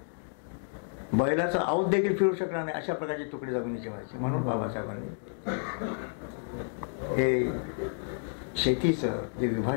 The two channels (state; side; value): silent; right; digital silence